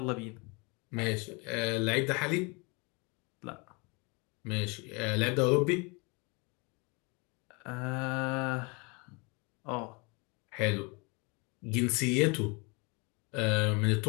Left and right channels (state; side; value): quieter; right; 30.0 dB